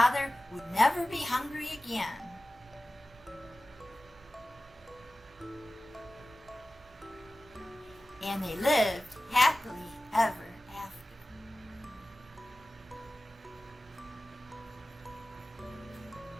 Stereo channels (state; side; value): normal; both; correlation 0.96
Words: would never be hungry again. And they lived happily ever after.